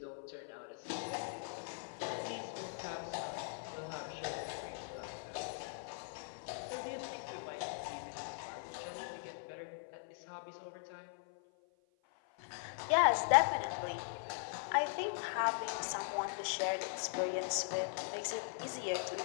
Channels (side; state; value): right; silent; 51 dB below the other